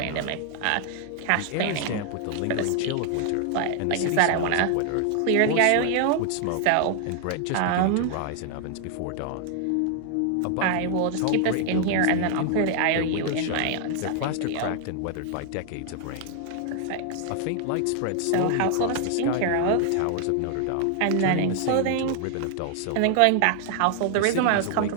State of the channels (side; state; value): both; different; correlation 0.00